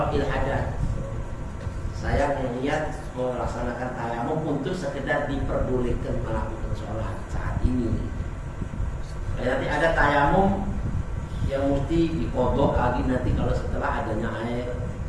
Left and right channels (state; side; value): identical; both; correlation 1.00